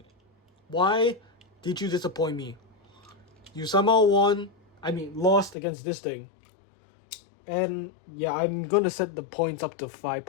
Why did you disappoint me? You somehow lost against this thing. And yeah, I'm gonna set the points up to 5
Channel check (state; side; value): drops out; right; at 5.6 s